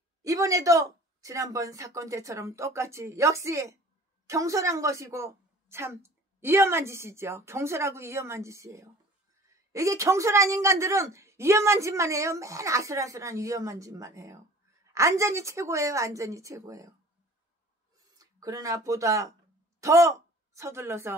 이번에도 지난번 사건 때처럼 똑같이 역시 경솔한 것이고 참 위험한 짓이죠. 경솔하고 위험한 짓이에요. 이게 경솔한 인간들은 위험한 짓만 해요. 맨 아슬아슬한 위험한 짓만 해요. 안전이 최고예요. 안전이 최고예요. 그러나 보다 더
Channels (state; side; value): normal; both; correlation 0.47